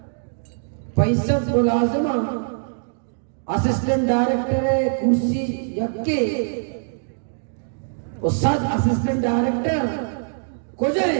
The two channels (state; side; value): silent; left; digital silence